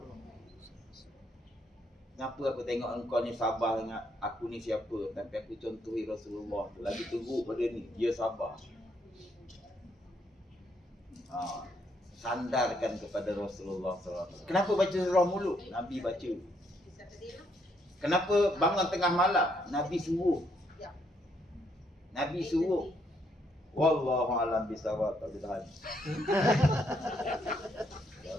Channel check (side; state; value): both; normal; correlation 0.73